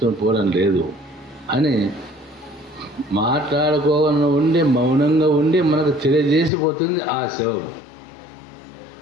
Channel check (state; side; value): drops out; right; at 6.5 s